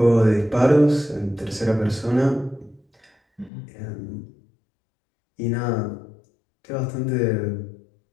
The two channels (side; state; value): right; drops out; at 3.5 s